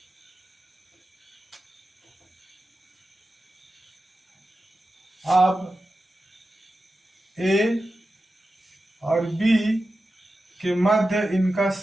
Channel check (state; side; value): normal; both; correlation 0.92